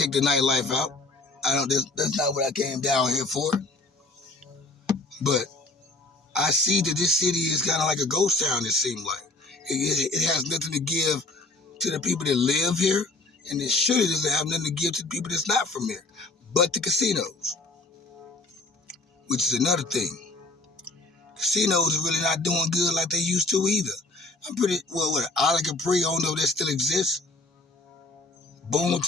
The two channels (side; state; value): right; quieter; 3.1 dB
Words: the nightlife out. I don't. That's not what I came down here for. But I see that this city is kind of like a ghost town. It seems like it has nothing to give to the people that live here, and it surely doesn't have nothing to give to the people that's not from here. But the casinos, which is another thing. Casinos are really not doing good like they used to either. I'm pretty what Isla Capri. I don't know if that still exists.